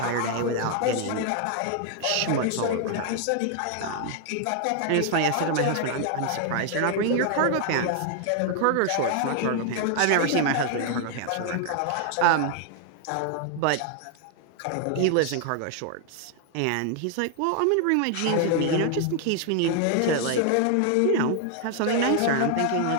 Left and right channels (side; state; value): both; different; correlation 0.00